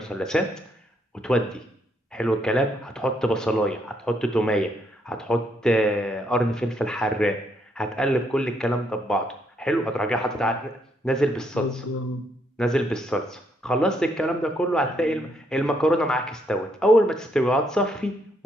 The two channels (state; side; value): normal; both; correlation 0.73